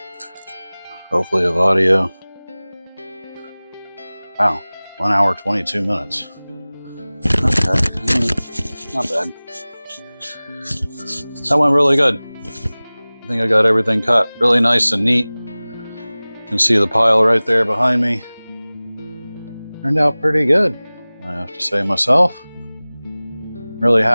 Hopefully with audio. Wow, 1 hour, 22 minutes. Okay, not bad. That went really good. I think I got everything cut really nice and neat. You can see the pile right there behind me. Turned out pretty good, I have to say myself. Really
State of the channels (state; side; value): inverted; both; correlation -0.99